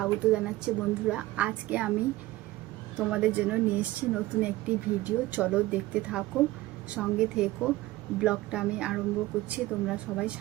জানাচ্ছি। বন্ধুরা, আজকে আমি তোমাদের জন্য নিয়ে এসেছি নতুন একটি ভিডিও। চলো দেখতে থাকো, সঙ্গে থেকো। ব্লগটা আমি আরম্ভ করছি, তোমরা সবাই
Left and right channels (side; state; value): left; quieter; 17.9 dB